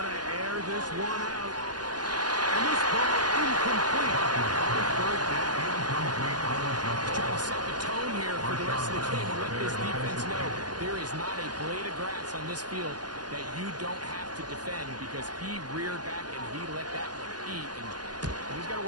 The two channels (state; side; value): late; left; 0.70 ms